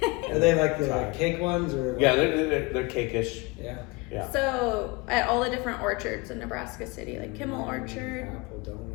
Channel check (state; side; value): quieter; right; 25.4 dB